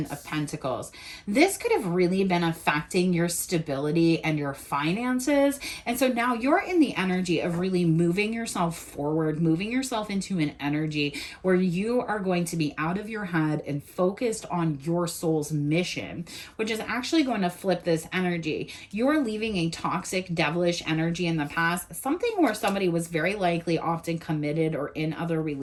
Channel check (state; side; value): identical; both; correlation 1.00